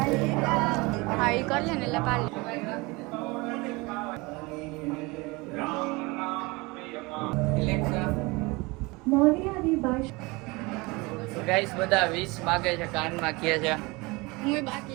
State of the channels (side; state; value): left; quieter; 24.7 dB